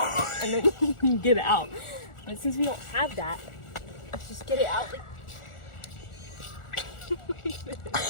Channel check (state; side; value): late; right; 1.4 ms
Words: then you can get it out. But since we don't have that, let's just get it out.